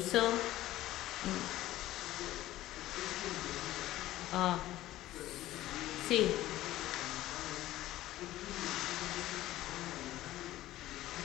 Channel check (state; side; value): quieter; right; 15.2 dB